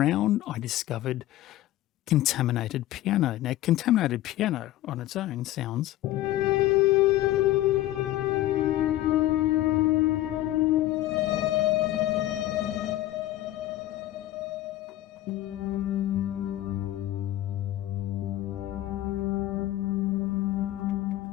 I discovered contaminated piano. Now, contaminated piano on its own sounds...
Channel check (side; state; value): right; quieter; 14.7 dB